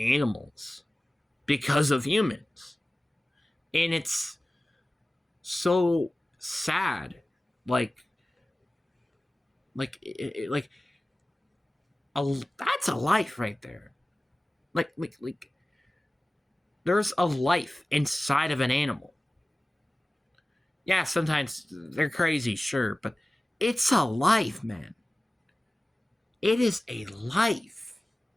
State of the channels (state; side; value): normal; both; correlation 0.97